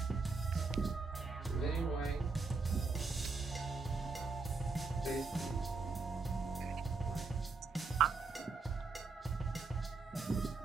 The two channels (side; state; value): left; quieter; 4.3 dB